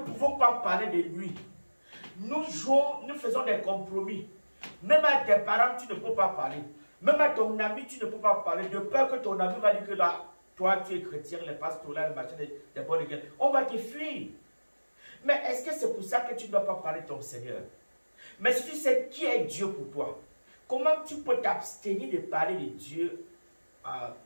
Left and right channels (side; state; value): both; inverted; correlation -1.00